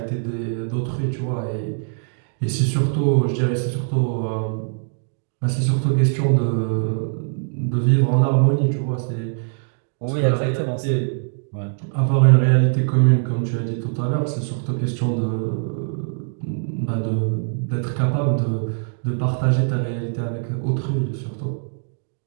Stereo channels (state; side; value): silent; left; digital silence